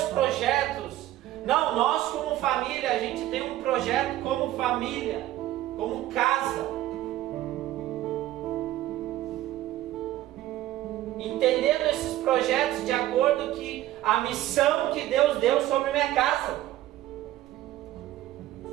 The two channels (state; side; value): quieter; left; 14.6 dB